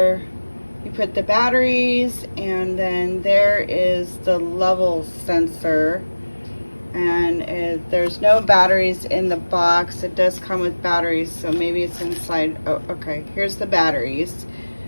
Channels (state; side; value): inverted; both; correlation -1.00